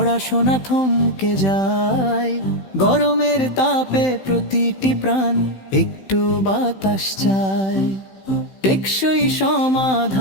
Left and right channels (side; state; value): right; late; 15 ms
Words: থমকে যায়। গরমের তাপে প্রতিটি প্রাণ একটু বাতাস চায়। টেকসই